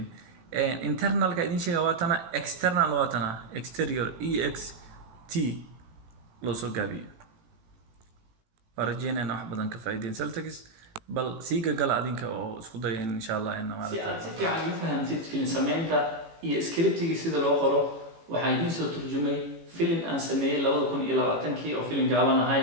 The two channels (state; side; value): late; left; 18 ms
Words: internalka idin sheega waa tana external waa tana exterior ext loo soo gaabiyo warajeenana wax badan ka faa'iideen Celtics bal siiga gal adinka oo isku day insha Allah in ma si fiican u fahamtid film sameynta iyo scriptiga sida loo qoro waxaa idin soo turjumay film aan sameeyay 2020 oo film gaaban ahay